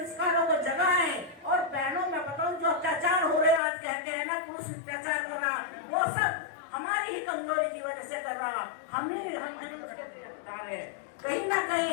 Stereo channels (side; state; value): right; drops out; at 3.6 s